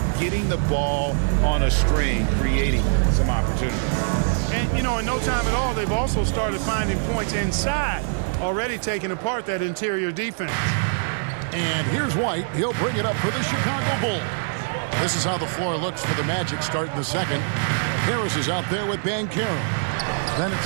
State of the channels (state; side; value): silent; left; digital silence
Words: getting the ball on a string, creating some opportunities. And, you know, in no time at all, they've also started finding points inside, already taking apart that interior defense. And here's White. He'll bring it up for the Chicago Bulls. This is how the floor looks for the Magic starting the second. Harris is out there with Banchero. Then